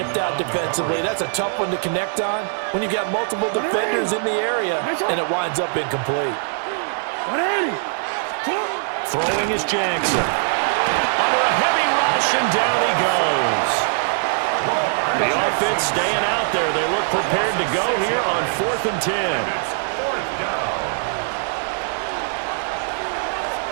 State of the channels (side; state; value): left; silent; digital silence